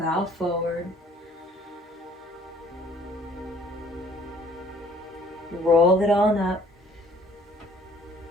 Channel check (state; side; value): normal; both; correlation 0.57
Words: forward. Roll it on up.